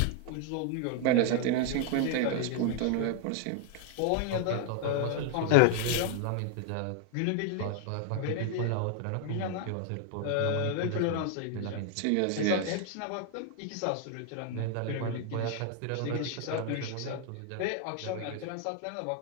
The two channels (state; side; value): different; both; correlation 0.00